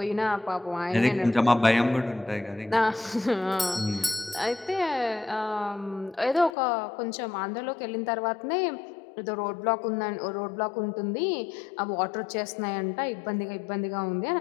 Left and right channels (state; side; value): drops out; right; at 6.5 s